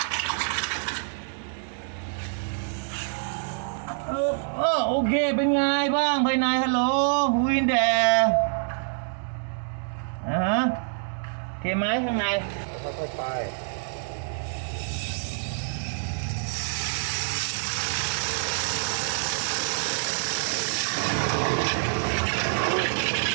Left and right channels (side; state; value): left; silent; digital silence